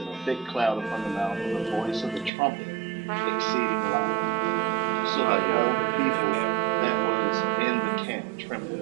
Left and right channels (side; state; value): left; drops out; at 2.3 s